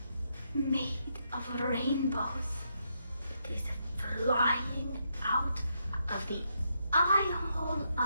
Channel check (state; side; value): inverted; both; correlation -0.79